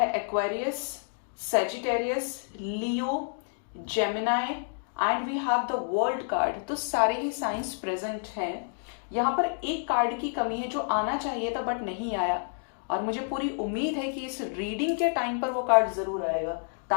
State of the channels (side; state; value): right; silent; digital silence